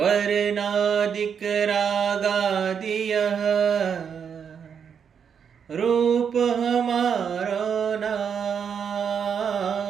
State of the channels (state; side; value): quieter; left; 7.3 dB